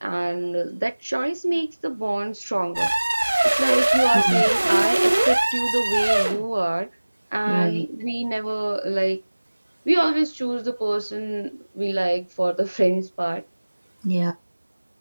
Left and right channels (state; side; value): inverted; both; correlation -1.00